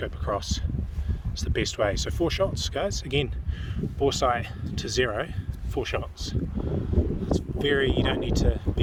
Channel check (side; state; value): both; identical; correlation 1.00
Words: across. It's the best way. So 4 shots, guys. Again, bore sight to 0, 4 shots. It's you don't need to